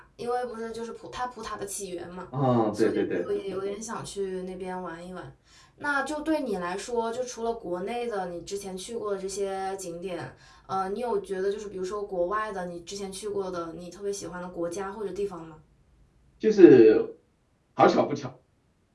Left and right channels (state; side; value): identical; both; correlation 1.00